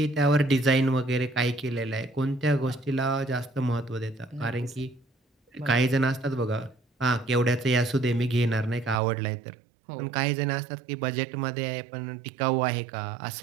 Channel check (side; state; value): left; drops out; at 9.0 s